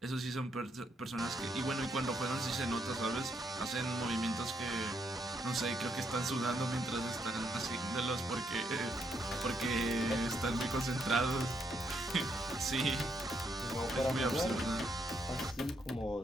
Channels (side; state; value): both; normal; correlation 0.76